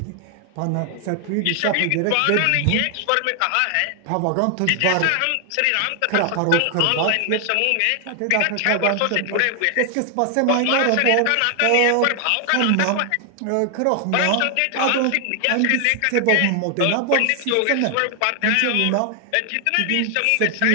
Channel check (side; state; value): both; different; correlation 0.00